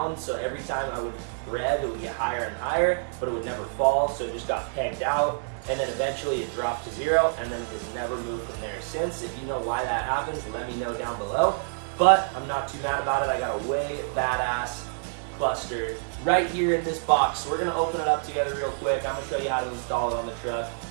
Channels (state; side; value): silent; left; digital silence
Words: so every time I would rev it would get higher and higher, but it would never fall, so it just got pegged out, and then eventually it dropped to zero, and then it has never moved from there since. If you know why that happens, let me know down below, but I'm not too mad about it. I got a way badass cluster right here in this box. So we're gonna open it up together real quick. I'm gonna show you how to install it on the truck,